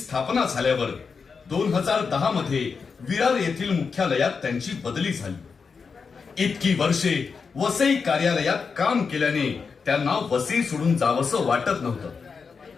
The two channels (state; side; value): quieter; right; 5.4 dB